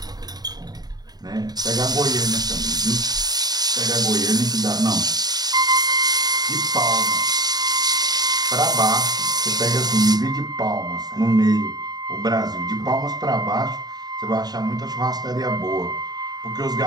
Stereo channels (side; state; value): left; late; 0.19 ms